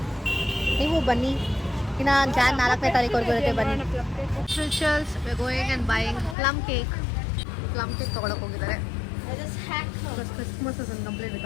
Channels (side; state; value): right; drops out; at 6.4 s